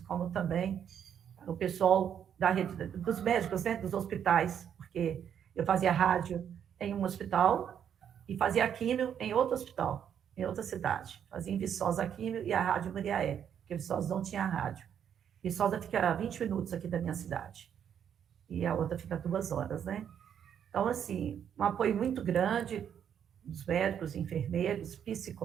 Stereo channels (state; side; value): quieter; left; 8.8 dB